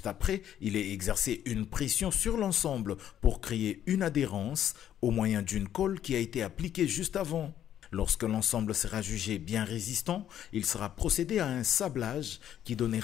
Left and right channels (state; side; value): quieter; right; 10.6 dB